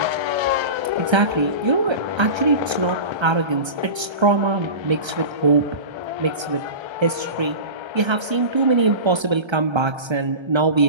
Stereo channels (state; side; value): late; left; 1.3 ms